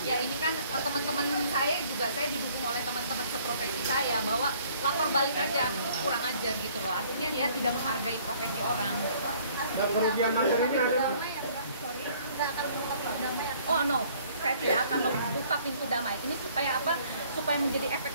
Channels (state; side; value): inverted; both; correlation -0.58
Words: Ya ini kan teman-teman saya juga, saya didukung oleh teman-teman seprofesi saya bahwa lapor balik aja, kurang ajar gitu loh. Artinya dia tidak menghargai profesi orang. Dan kerugian materinya ada? Oh no, saya tidak akan membuka pintu damai. Ini supaya apa? Supaya menjadi efek